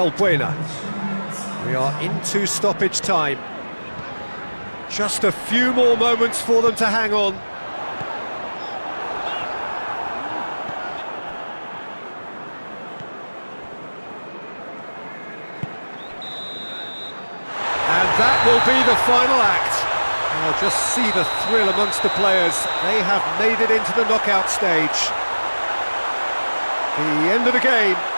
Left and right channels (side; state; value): both; inverted; correlation -1.00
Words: We are into stoppage time. Just a few more moments for them to hang on. And that will be the final act. Oh, just see the thrill amongst the players. They have made it into the knockout stage. The end of the game.